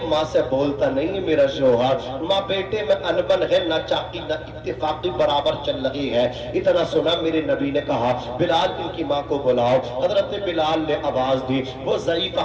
ماں سے بولتا نہیں ہے میرا شوہر، ماں بیٹے میں انبن ہے، نہ چاقی نہ اتفاقی برابر چل رہی ہے۔ اتنا سنا میرے نبی نے کہا بلال ان کی ماں کو بلاؤ۔ حضرت بلال نے آواز دی، وہ ضعیف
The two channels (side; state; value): both; identical; correlation 1.00